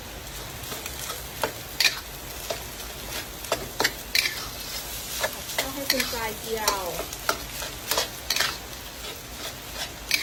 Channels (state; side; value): identical; both; correlation 1.00